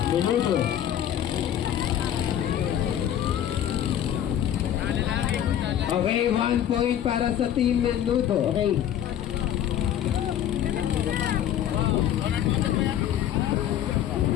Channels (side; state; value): right; quieter; 10.7 dB